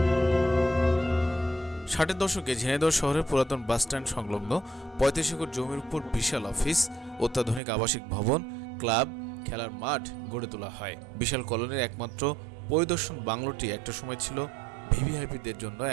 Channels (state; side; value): drops out; left; at 7.6 s